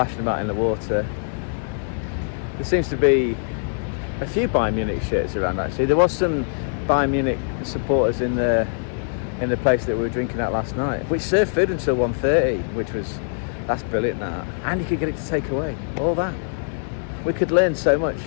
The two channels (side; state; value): right; silent; 58 dB below the other